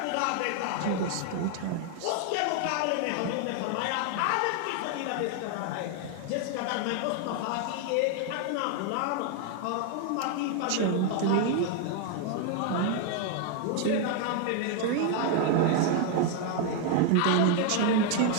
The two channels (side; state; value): both; different; correlation 0.01